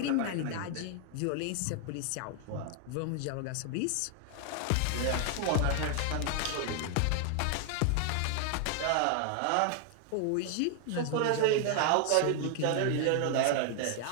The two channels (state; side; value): different; both; correlation 0.00